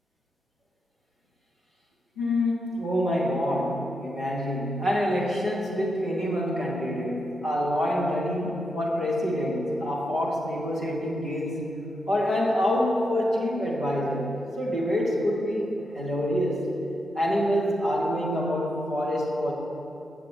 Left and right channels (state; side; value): normal; both; correlation 0.83